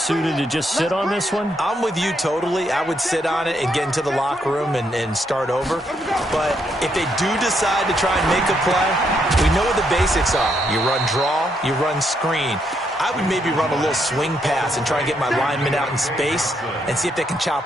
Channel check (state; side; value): normal; both; correlation 0.76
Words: to just sit on this one? I'm with you totally. I would sit on it and get into the locker room and start over. But if they do decide to try and make a play, we know what the basics are. You run draw, you run screen. I would maybe run a little swing pass and try and get my lineman out in space and see if they can